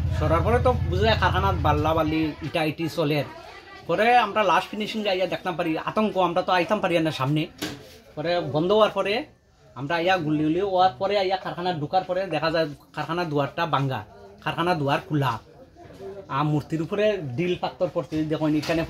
সরার পরে তো বুঝা যায় কারখানার বাল্লা বাল্লি ইটা ইটি চলে পরে আমরা লাস্ট ফিনিশিং আইয়া দেখতাম পারি আতঙ্ক আমরা তো আইতাম পারি না সামনে পরে বন্ধ হওয়ার পরে আমরা আইয়া গুলি হওয়ার পরে আইয়া কারখানা ঢুকার পরে দেখা যায় কারখানা দুয়ারটা ভাঙ্গা কারখানা দুয়ার খোলা আর মূর্তির উপরে ডিল পাত্তর পড়ছে দেখুন এখানে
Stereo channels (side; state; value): both; identical; correlation 1.00